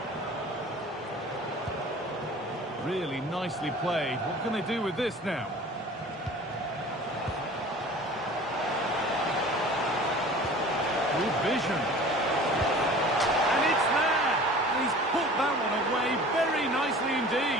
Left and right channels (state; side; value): normal; both; correlation 0.43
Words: Really nicely played. What can they do with this now? Good vision. And it's there! And he's put that one away very nicely